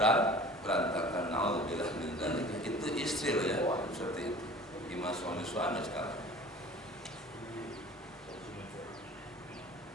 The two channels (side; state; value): both; normal; correlation 0.44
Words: Na'udzubillah min dzalik. Itu istri loh ya, seperti itu. Gimana suami-suami sekarang?